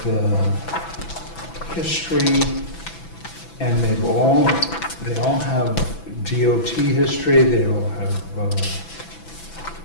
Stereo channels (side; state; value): right; late; 6.0 ms